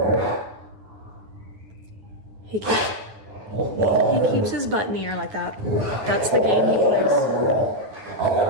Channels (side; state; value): left; late; 9.5 ms